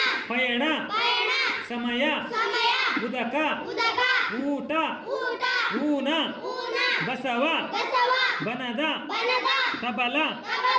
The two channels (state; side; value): identical; both; correlation 1.00